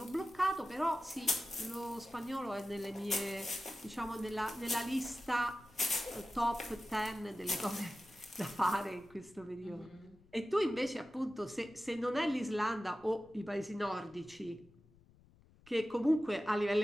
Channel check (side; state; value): left; noise; rumble, 27 dB below the sound